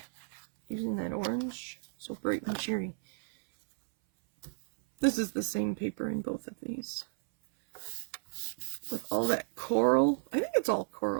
Using that orange. So bright and cheery. This is the same paper in both of these. With all that coral. I think it's all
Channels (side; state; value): left; silent; 56 dB below the other